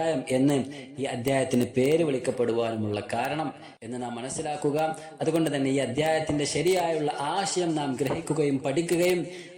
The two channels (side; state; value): both; identical; correlation 1.00